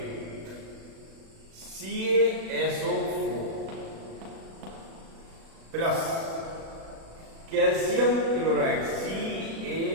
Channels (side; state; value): left; late; 36 ms